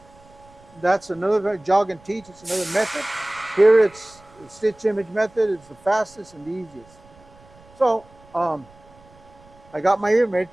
That's another jog and teach. It's another method. Here it's the stitch image method. It's the fastest and the easiest. So I got my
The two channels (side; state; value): right; noise; rumble, 26 dB below the sound